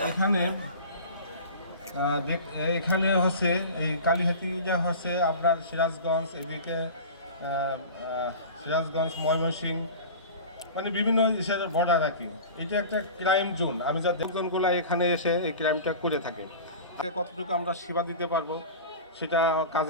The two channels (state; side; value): inverted; both; correlation -0.35